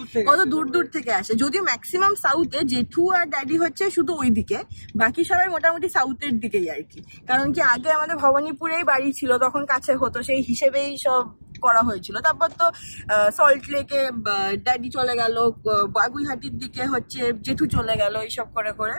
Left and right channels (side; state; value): both; inverted; correlation -1.00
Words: কত দূর দূর থেকে আসে। যদিও ম্যাক্সিমাম সাউথে, জেঠু আর ড্যাডি হচ্ছে শুধু ওই দিকে, বাকি সবাই মোটামুটি সাউথের দিকেই আর কি। কারণ কি আগে আমাদের ভবানীপুরেই বাড়ি ছিল, তখন কাছে হতো, সেই হিসেবেই সব করা হয়েছিল। তারপর তো সল্ট লেকে ড্যাডি চলে গেল, বাগুইহাটির দিকে হচ্ছে জেঠু চলে গেল, এইসব করে করে